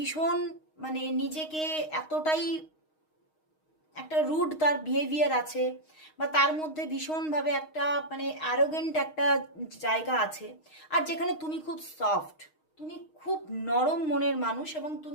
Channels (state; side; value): late; right; 6.4 ms